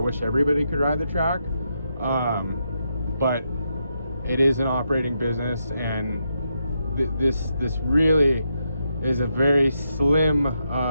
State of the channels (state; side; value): inverted; both; correlation -0.82